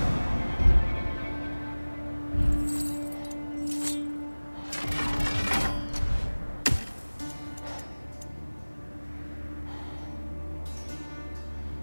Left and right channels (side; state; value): both; inverted; correlation -1.00